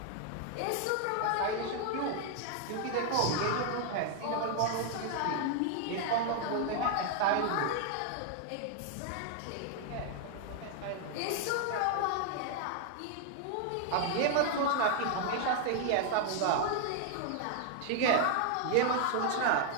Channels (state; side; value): different; both; correlation 0.00